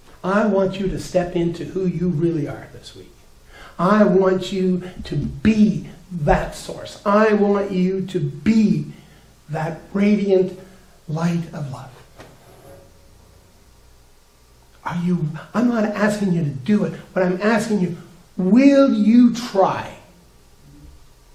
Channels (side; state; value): both; identical; correlation 1.00